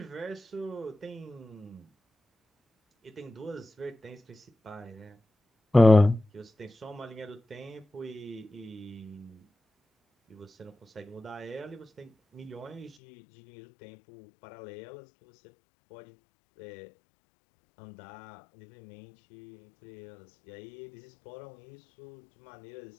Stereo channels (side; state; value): right; drops out; at 12.9 s